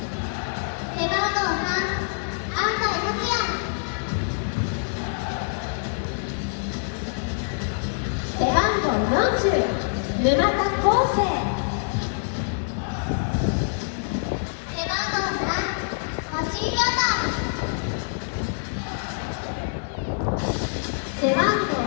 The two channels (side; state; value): right; silent; digital silence